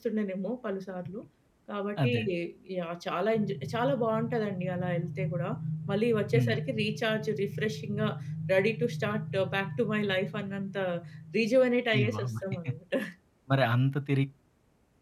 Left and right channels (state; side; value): identical; both; correlation 1.00